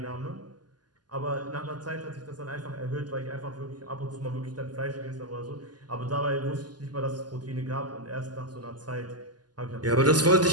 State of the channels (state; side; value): late; left; 0.70 ms